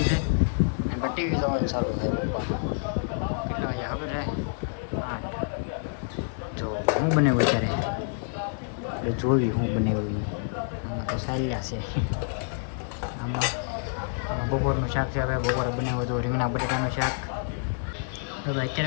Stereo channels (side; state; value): right; silent; digital silence